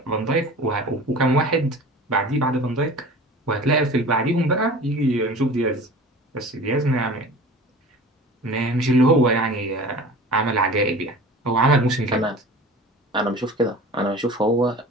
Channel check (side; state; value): both; normal; correlation 0.40